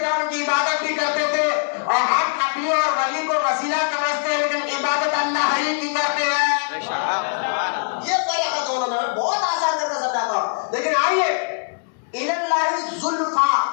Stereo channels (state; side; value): silent; right; digital silence